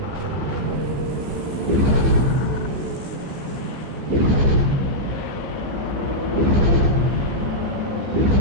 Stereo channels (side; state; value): left; late; 15 ms